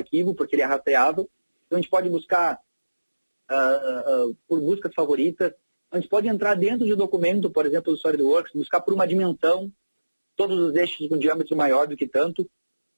porque ele é rastreável. Então a gente pode buscar por buscas favoritas. A gente pode entrar dentro de documento, por exemplo, do SolidWorks, buscar por uma dimensão, todos os eixos com diâmetro maior do que tanto.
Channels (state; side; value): inverted; both; correlation -1.00